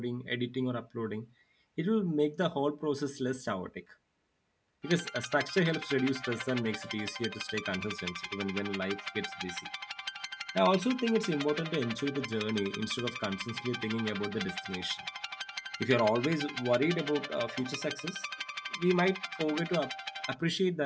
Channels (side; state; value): both; identical; correlation 1.00